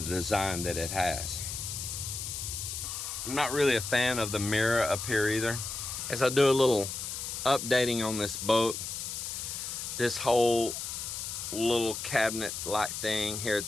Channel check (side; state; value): left; noise; hiss, 5 dB below the sound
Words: the design that it has. I'm not really a fan of the mirror up here either. As I do a little updating on this boat, this whole little cabinet-like thing here at